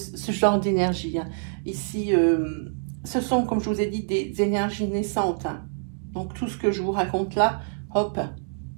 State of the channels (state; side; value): silent; left; digital silence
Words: genre d'énergie. Hein. Ici, ce sont, comme je vous ai dit, des énergies naissantes. Hein. Donc, tout ce que je vous raconte là, hop,